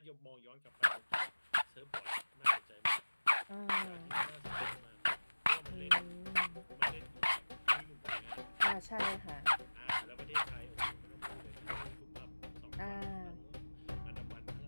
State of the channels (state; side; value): inverted; both; correlation -1.00